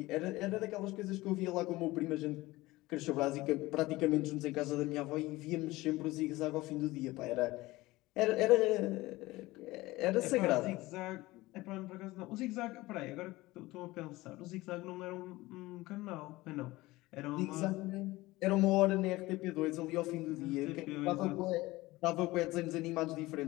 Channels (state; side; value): quieter; right; 19.5 dB